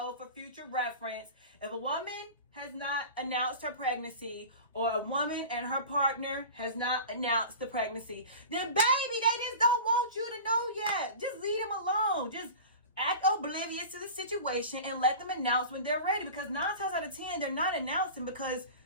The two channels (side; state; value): both; inverted; correlation -0.35